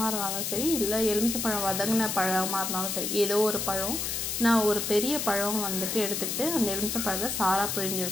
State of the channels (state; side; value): noise; left; hiss, 2 dB below the sound